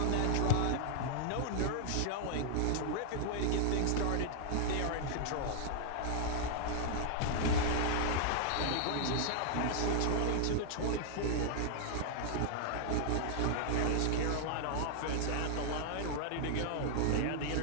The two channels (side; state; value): both; different; correlation -0.01